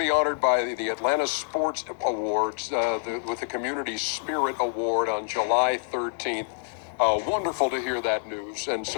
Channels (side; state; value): right; silent; 60 dB below the other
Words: honored by the Atlanta Sports Awards with the Community Spirit Award on July 13th. Wonderful to hear that news, and